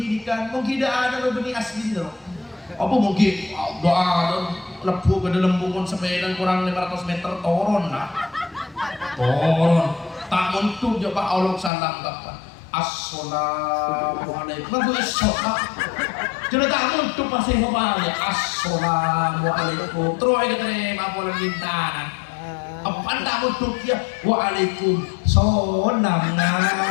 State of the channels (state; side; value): drops out; right; at 11.7 s